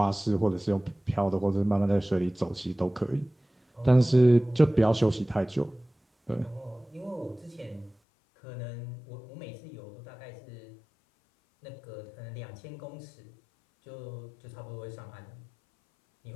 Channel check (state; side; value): drops out; right; at 8.0 s